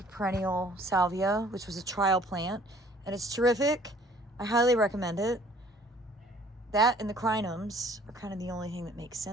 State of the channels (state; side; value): normal; both; correlation 0.55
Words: perennial salvia, which was a trial plant, and it's terrific. I highly recommend it. That and the crinums are kind of the only thing that makes